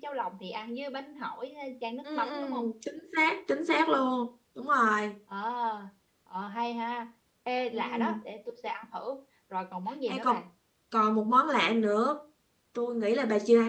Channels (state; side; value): identical; both; correlation 1.00